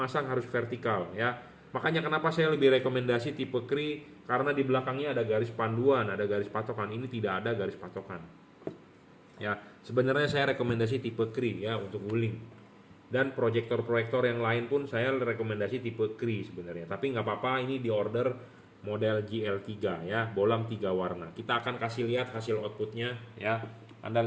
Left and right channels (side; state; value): both; identical; correlation 1.00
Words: harus vertikal ya. Makanya kenapa saya lebih rekomendasi tipe Cree, karena di belakangnya ada garis panduan, ada garis patokan. Ini tidak ada garis patokan. Ya, sebenarnya saya rekomendasi tipe Cree ya untuk guling. Dan proyektor-proyektor yang lain pun saya rekomendasi tipe Cree sebenarnya. Tapi nggak apa-apa, ini di order model GL3 ya, bolam 3 warna. Kita akan kasih lihat hasil outputnya ya. Anda